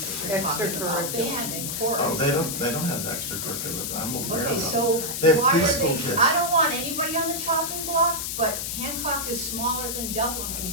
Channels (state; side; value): noise; left; hiss, 3 dB below the sound